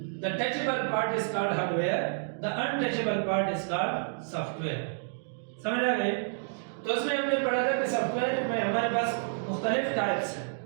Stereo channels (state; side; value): silent; left; digital silence